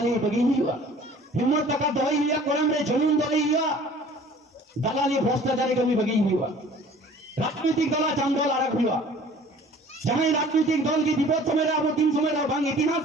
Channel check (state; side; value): normal; both; correlation 0.49